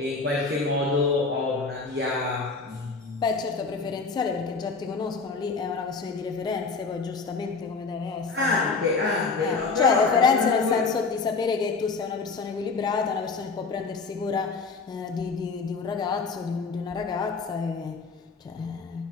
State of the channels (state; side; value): quieter; right; 4.4 dB